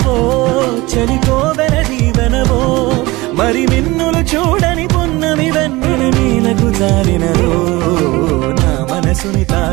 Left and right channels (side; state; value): left; quieter; 21.2 dB